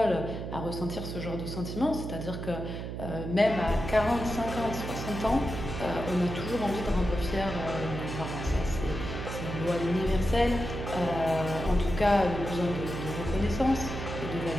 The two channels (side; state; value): right; noise; hum, 6 dB below the sound